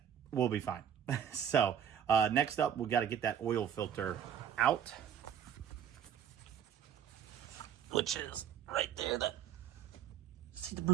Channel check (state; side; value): quieter; left; 8.7 dB